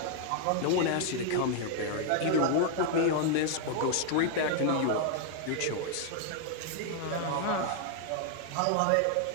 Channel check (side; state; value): both; different; correlation 0.00